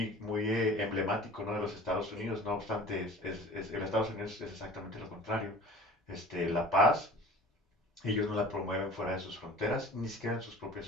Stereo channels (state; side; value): normal; both; correlation 0.43